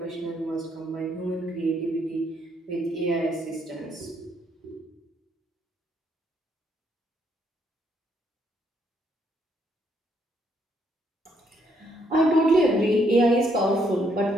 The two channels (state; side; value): normal; both; correlation 0.72